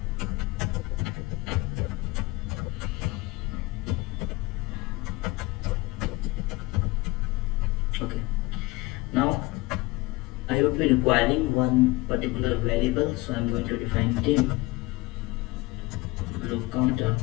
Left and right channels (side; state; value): right; quieter; 21.4 dB